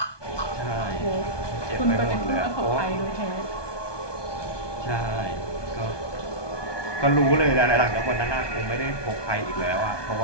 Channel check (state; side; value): late; right; 1.2 ms